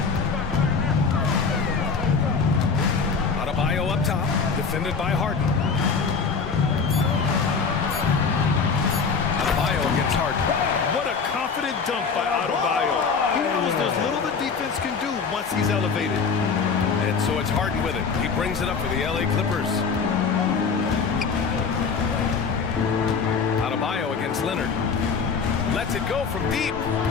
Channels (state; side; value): quieter; right; 5.4 dB